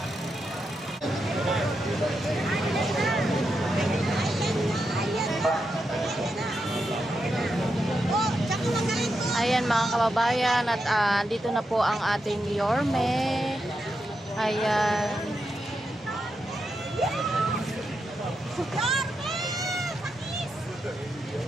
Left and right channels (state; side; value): normal; both; correlation 0.85